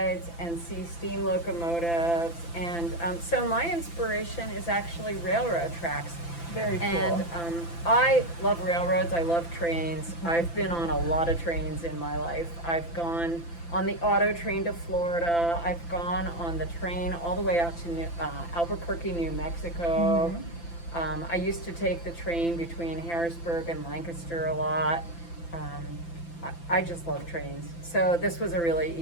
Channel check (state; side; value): late; right; 5.9 ms